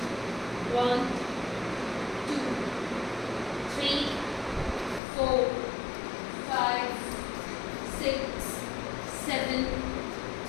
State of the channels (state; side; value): drops out; right; at 5.0 s